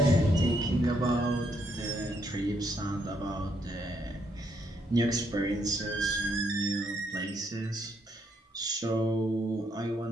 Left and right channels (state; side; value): normal; both; correlation 0.74